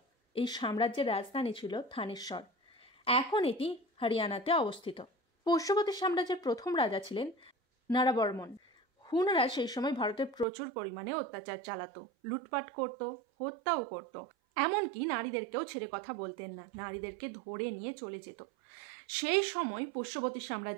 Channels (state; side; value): drops out; left; at 10.5 s